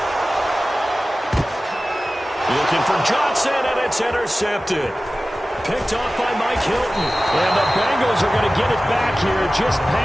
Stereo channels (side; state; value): both; normal; correlation 0.96